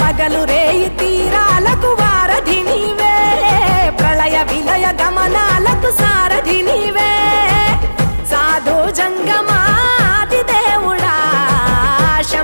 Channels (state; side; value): inverted; both; correlation -1.00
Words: పగలు రేయి తీరాలకు వారధి నీవే, ప్రళయ విలయ గమనాలకు సారథి నీవే, సాధు జంగమాది దేవుడా